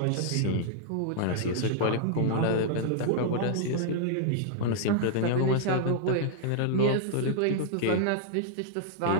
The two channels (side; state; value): both; different; correlation -0.01